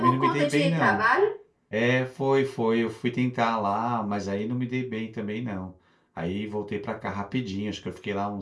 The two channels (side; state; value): both; identical; correlation 1.00